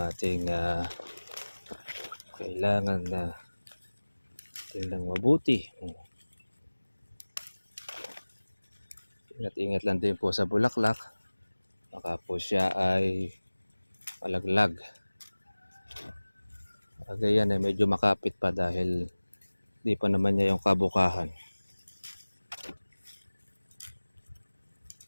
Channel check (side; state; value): both; inverted; correlation -1.00